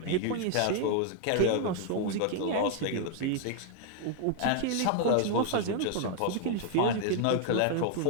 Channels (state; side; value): different; both; correlation 0.00